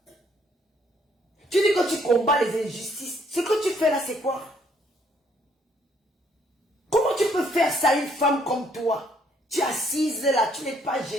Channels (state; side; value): normal; both; correlation 0.67